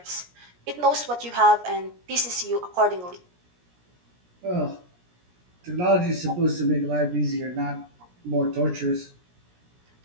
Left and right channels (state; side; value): late; left; 17 ms